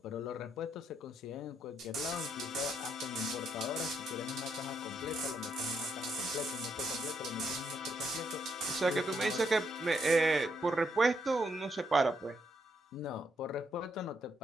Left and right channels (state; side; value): normal; both; correlation 0.76